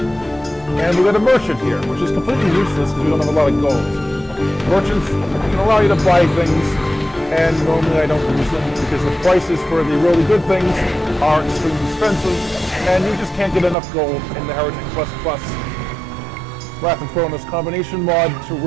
And we got a merchant here, which is completely useless because we don't have a lot of gold. Merchants can allow you to buy things, and normally I don't use them because the prices for the really good things are extremely expensive, and you just can't get enough gold in the HereticPlus Wrath of Cronos combination mod to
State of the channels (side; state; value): left; drops out; at 13.8 s